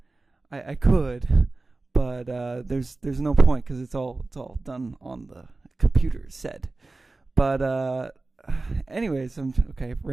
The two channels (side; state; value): left; quieter; 3.4 dB